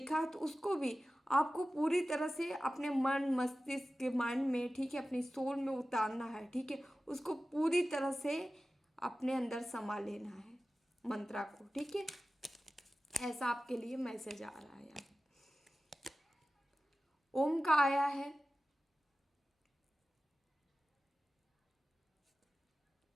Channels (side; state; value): both; normal; correlation 0.95